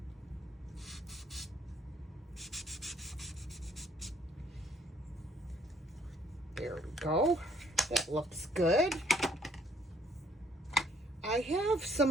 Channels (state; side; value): normal; both; correlation 0.65